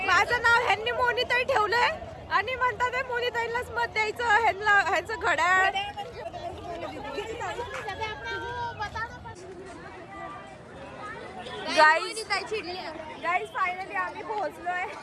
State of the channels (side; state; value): both; identical; correlation 1.00